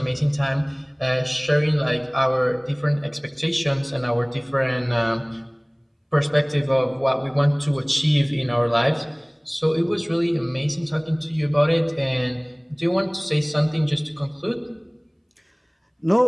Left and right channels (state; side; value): identical; both; correlation 1.00